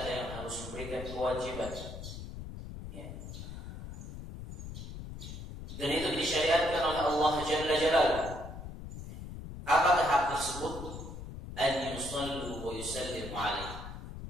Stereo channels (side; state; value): left; noise; rumble, 10 dB below the sound